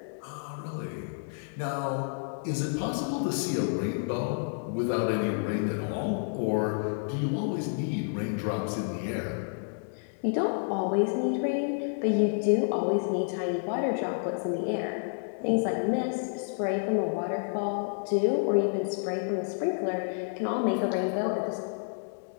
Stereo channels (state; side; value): silent; right; digital silence